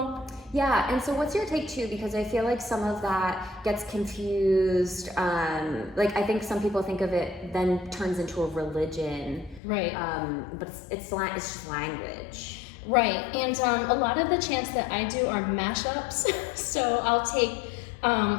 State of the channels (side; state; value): right; drops out; at 9.6 s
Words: Yeah, and so what's your take too? Because I feel like some of that gets confused. Like I think some people think of it then turns into a religion. Right. But it's just language. Right, and a lot of the chants that I do are mashups. So I'll take,